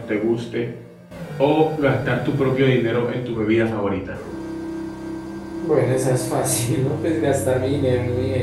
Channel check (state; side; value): identical; both; correlation 1.00